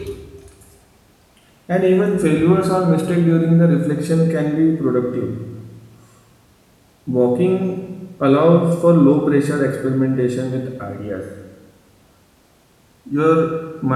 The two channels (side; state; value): both; identical; correlation 1.00